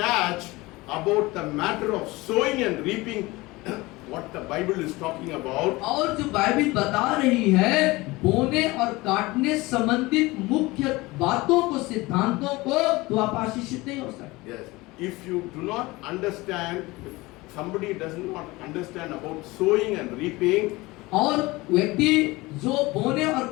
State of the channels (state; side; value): quieter; right; 21.4 dB